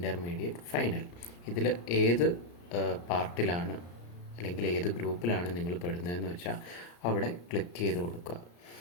ഫൈനൽ, ഇതിൽ ഏത് പാർട്ടിലാണ് അല്ലെങ്കിൽ ഏത് ഗ്രൂപ്പിലാണ് നിങ്ങൾ പെടുന്നതെന്ന് വെച്ചാൽ അവിടെ ക്ലിക്ക് ചെയ്ത് കൊടുക്കുക.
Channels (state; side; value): late; right; 34 ms